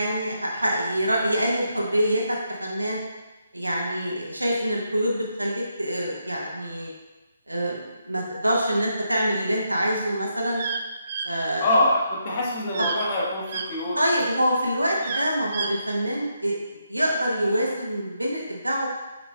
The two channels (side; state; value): both; inverted; correlation -0.80